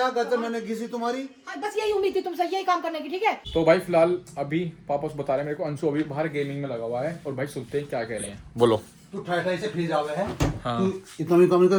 गजर मैंने घिसी तुम्हारी। हाँ, बस यही उम्मीद थी तुमसे, यही काम करने की, ठीक है? तो भाई फिलहाल अभी पापा बता रहे हैं मेरे को, अंशु अभी बाहर गेमिंग में लगा हुआ है। और भाई सुनते हैं क्या कह रहे हैं, बोलो। तू ठाई से फ्री जावे है। हाँ। तू इतना भी काम नहीं कर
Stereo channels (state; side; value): identical; both; correlation 1.00